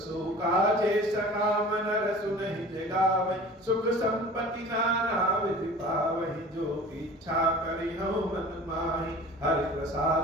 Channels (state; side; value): normal; both; correlation 0.42